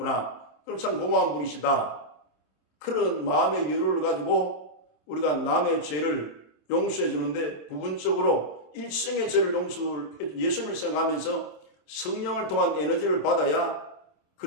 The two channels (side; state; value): right; late; 27 ms